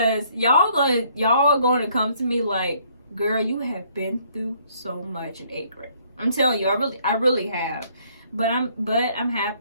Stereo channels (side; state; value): both; inverted; correlation -0.64